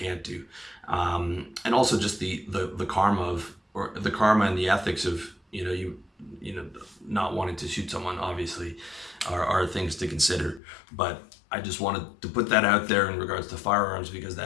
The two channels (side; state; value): right; drops out; at 10.6 s